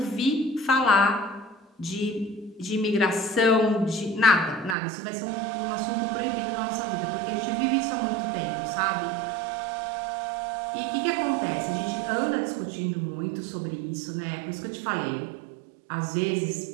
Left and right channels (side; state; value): left; drops out; at 4.8 s